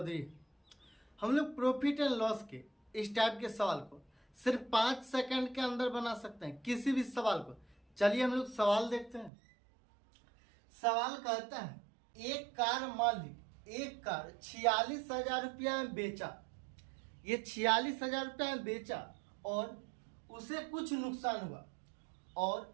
है। हम लोग प्रॉफिट एंड लॉस के इस टाइप के सवाल को सिर्फ 5 सेकंड के अंदर बना सकते हैं, किसी भी सवाल को। चलिए हम लोग सवाल देखते हैं। सवाल कहता है एक कार मालिक एक कार 46,000 रुपया में बेचा। ये 46,000 रुपया में बेचा और उसे कुछ नुकसान हुआ।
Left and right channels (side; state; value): left; drops out; at 9.3 s